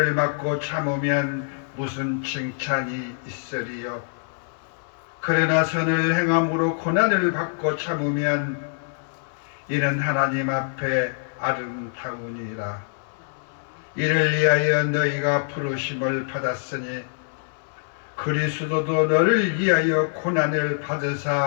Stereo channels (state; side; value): silent; right; digital silence